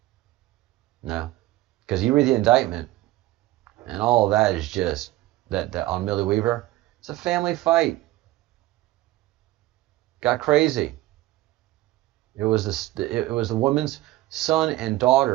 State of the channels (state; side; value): quieter; left; 17.1 dB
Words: No, because you read the indictment, and all of that is just that on Millie Weaver. It's a family fight. Got crazy. It was the woman's son and